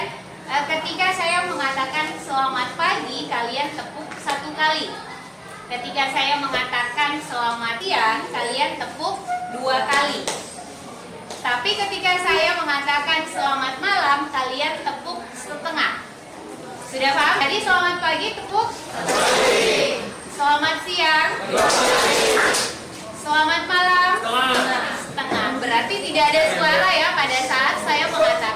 ketika saya mengatakan selamat pagi, kalian tepuk 1 kali. Ketika saya mengatakan selamat siang, kalian tepuk 2 kali. Tapi ketika saya mengatakan selamat malam, kalian tepuk setengah. Sudah paham? Jadi selamat pagi tepuk. Selamat siang. Selamat malam. Setengah. Berarti tidak ada suara ya pada saat saya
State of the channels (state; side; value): identical; both; correlation 1.00